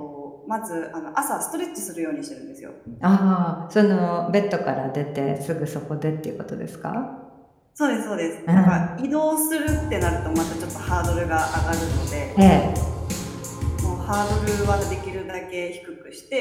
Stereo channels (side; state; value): both; identical; correlation 1.00